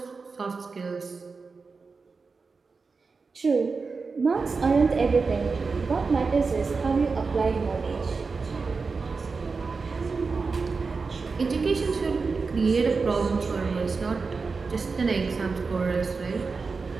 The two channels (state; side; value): quieter; left; 4.5 dB